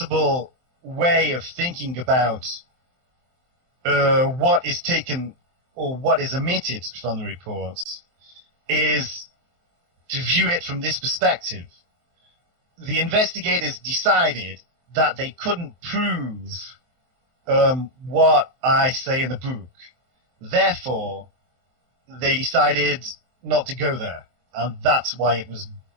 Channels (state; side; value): late; left; 23 ms